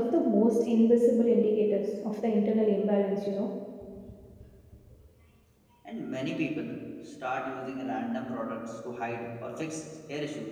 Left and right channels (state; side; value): identical; both; correlation 1.00